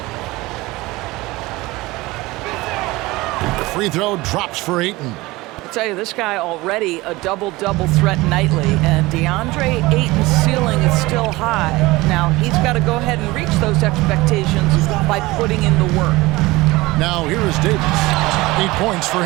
Free throw drops for Ayton. I tell you, this guy already a double-double threat nightly, and DeAndre Ayton's ceiling is still high. Now, he's got to go ahead and reach those expectations by putting in the work. Now, here is Davis. 8 points for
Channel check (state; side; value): quieter; left; 20.6 dB